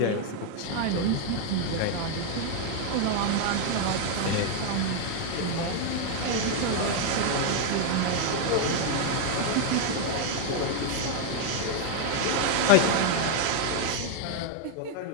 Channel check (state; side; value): different; both; correlation 0.01